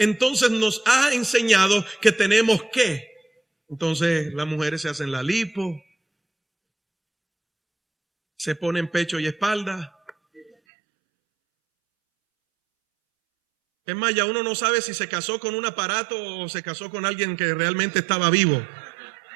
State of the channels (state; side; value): drops out; left; at 10.5 s